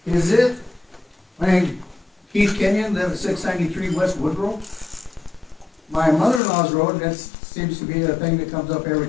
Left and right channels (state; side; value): drops out; right; at 6.4 s